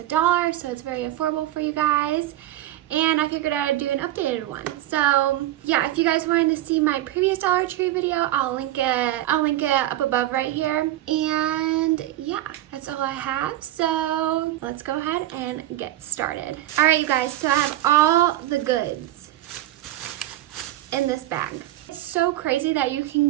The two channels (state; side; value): quieter; left; 14.7 dB